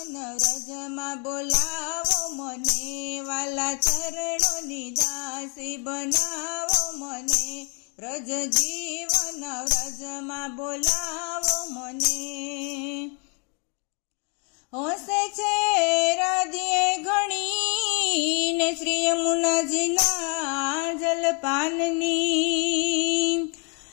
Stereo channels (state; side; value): quieter; right; 36.8 dB